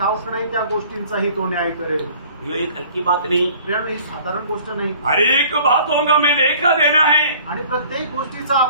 नाही त्या गोष्टींचाही तो न्याय करेल। ये एक हल्की बात नहीं, प्रियांनो, ही साधारण गोष्ट नाही, हर एक बातों का मैं लेखा देना है। आणि प्रत्येक गोष्टीचा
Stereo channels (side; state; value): both; inverted; correlation -0.51